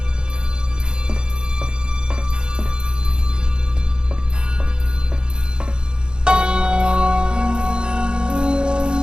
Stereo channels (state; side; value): late; left; 0.049 ms